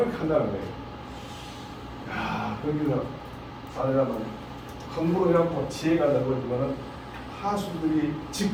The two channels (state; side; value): identical; both; correlation 1.00